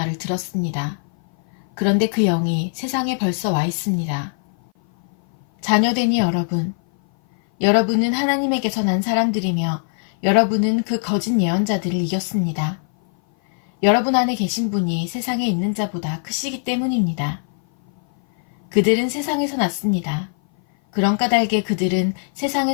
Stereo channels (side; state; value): right; silent; 57 dB below the other